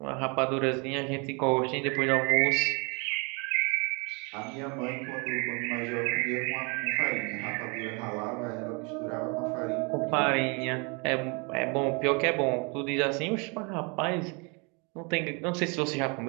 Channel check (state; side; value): quieter; left; 31.7 dB